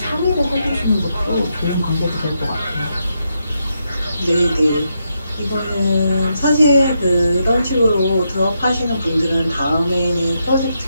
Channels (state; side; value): inverted; both; correlation -0.82